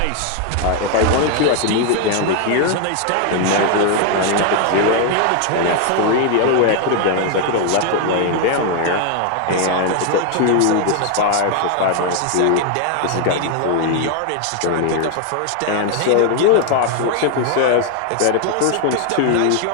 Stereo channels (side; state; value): both; different; correlation 0.01